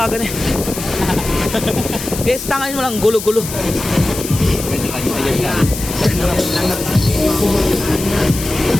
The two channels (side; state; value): left; noise; hiss, 8 dB below the sound